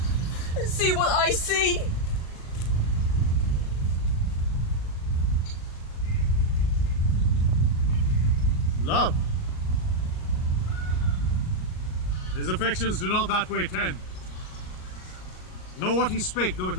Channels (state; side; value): late; right; 38 ms